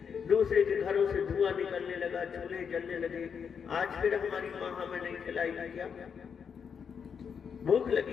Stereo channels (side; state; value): right; quieter; 6.8 dB